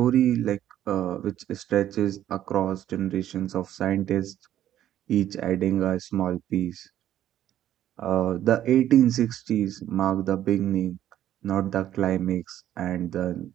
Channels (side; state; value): left; quieter; 11.8 dB